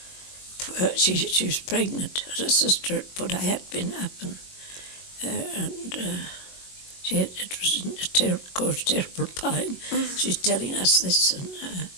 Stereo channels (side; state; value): right; late; 22 ms